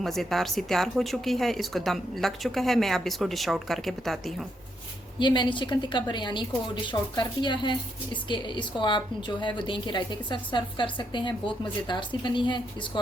सी तैयार हो चुकी है। इसको दम लग चुका है। मैं अब इसको डिश आउट करके बताती हूँ। ये मैंने चिकन टिक्का बिरयानी को डिश आउट कर दिया है। इसको आप जो है वो दही के रायते के साथ सर्व कर सकते हैं। बहुत मज़ेदार सी बनी है। इसको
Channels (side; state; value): both; normal; correlation 0.78